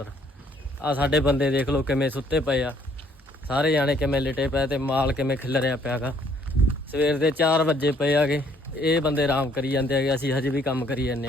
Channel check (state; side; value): normal; both; correlation 0.64